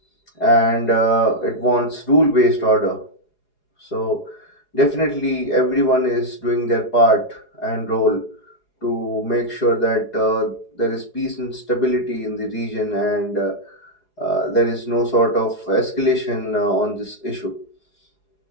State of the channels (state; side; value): late; right; 4.8 ms